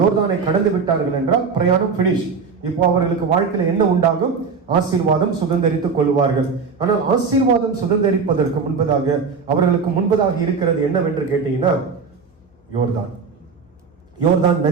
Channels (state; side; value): quieter; left; 5.3 dB